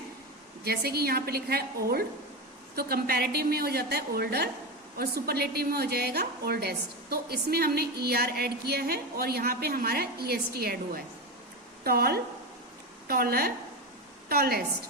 जैसे कि यहाँ पे लिखा है ओल्ड, तो कंपैरेटिव में हो जाता है ओल्डर, और सुपरलेटिव में हो जाएगा ओल्डेस्ट। तो इसमें हमने ER ऐड किया है, और यहाँ पे हमारा EST ऐड हुआ है। Tall, taller, tallest,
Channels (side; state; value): both; normal; correlation 0.18